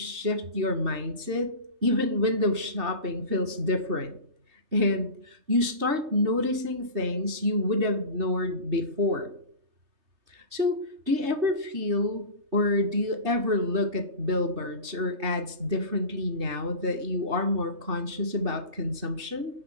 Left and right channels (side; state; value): left; late; 3.2 ms